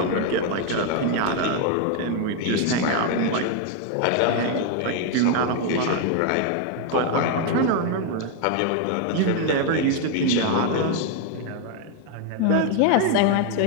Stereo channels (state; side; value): different; both; correlation 0.01